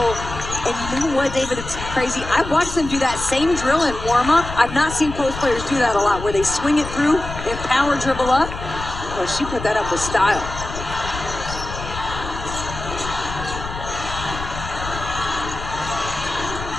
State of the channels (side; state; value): left; noise; rumble, 9 dB below the sound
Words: And you know what, David, it's crazy. I watched them do that same drill in warm-up. I've not seen post players do that a lot, where they swing it through and power dribble up. Well, she put that up with style.